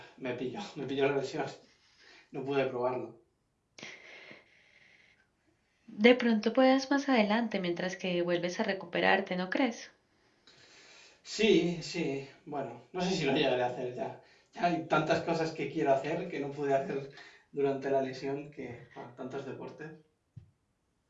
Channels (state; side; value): identical; both; correlation 1.00